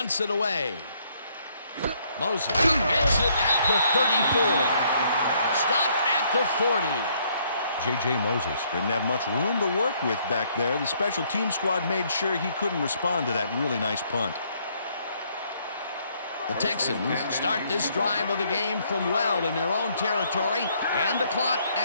it away. Moses gets it at the 34. Stopped at the 40. J.J. Moses didn't have much room to work with back there. The special team squad made sure he couldn't respond to that really nice punt. The Texans start this drive of the game from well in their own territory, and the clock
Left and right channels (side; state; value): both; inverted; correlation -0.68